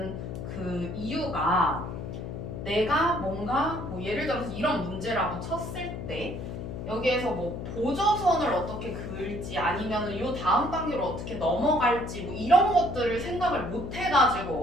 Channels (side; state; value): left; noise; hum, 7 dB below the sound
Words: 그 이유가 내가 뭔가 뭐 예를 들어서 이런 문제라고 쳤을 때 여기에서 뭐 보조선을 어떻게 그을지 아니면은 요 다음 단계로 어떻게 넘어갈지 뭐 이런 것들을 생각을 못